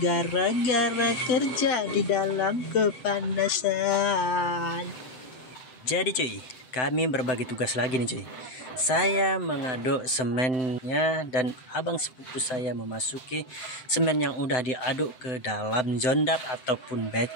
gara-gara kerja di dalam kepanasan. Jadi cuy, kami berbagi tugas lagi nih cuy. Saya mengaduk semennya dan abang sepupu saya memasuki semen yang udah diaduk ke dalam jondap ataupun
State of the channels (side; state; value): right; late; 7.8 ms